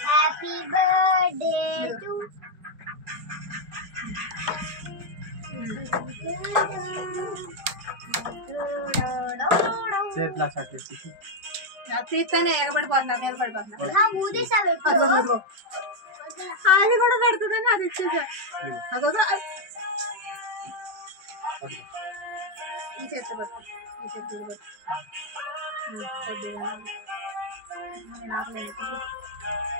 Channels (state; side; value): late; left; 5.3 ms